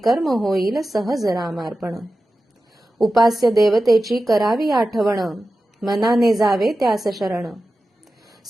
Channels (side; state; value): both; normal; correlation 0.94